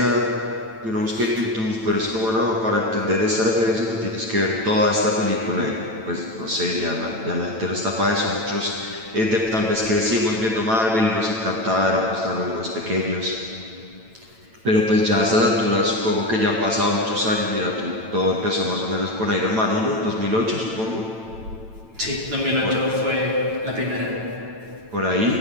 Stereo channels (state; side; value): late; left; 9.0 ms